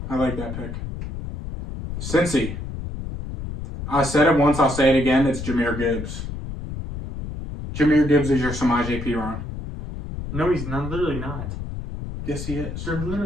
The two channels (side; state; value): left; noise; rumble, 8 dB below the sound